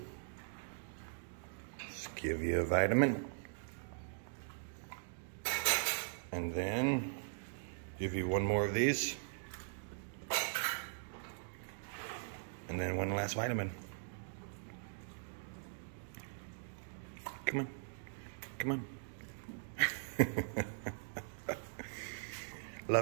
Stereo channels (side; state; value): left; silent; digital silence